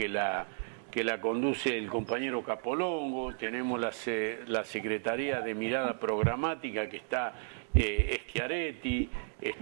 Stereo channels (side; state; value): left; silent; digital silence